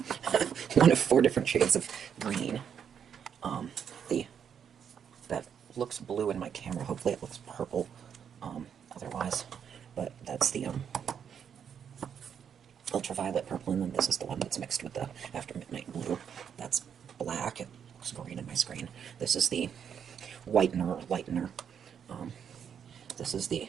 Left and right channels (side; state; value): left; quieter; 7.9 dB